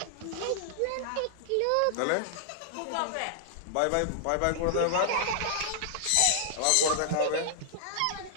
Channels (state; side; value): different; both; correlation -0.01